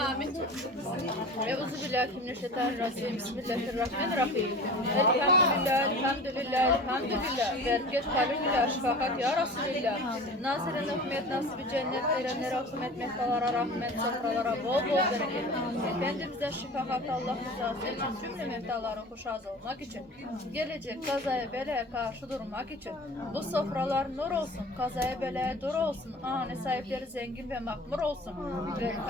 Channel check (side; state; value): both; normal; correlation 0.39